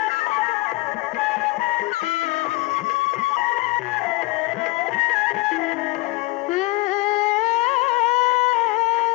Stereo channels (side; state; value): right; quieter; 22.1 dB